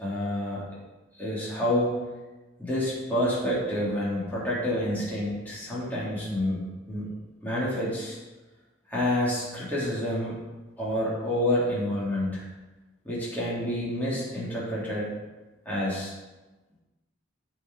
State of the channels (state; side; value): normal; both; correlation 0.35